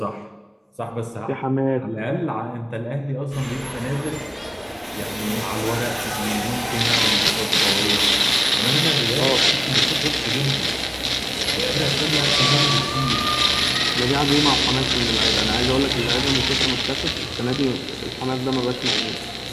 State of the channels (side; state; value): both; identical; correlation 1.00